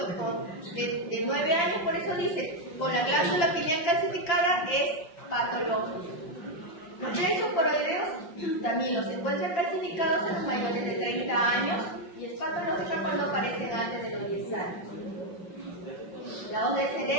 de 9 años, por eso dice, con la glándula pineal calcificada es patológico. Los plexos coloideos también los encuentran calcificados en los mayores de 30 años y es patológica cuando aparecen antes de los 10 años. La onda del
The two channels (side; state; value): right; late; 5.8 ms